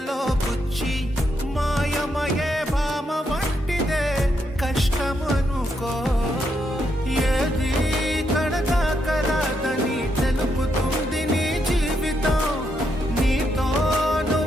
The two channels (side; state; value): both; normal; correlation 0.79